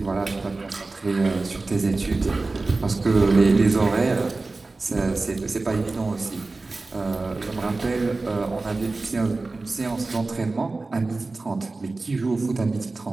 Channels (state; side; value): quieter; left; 3.5 dB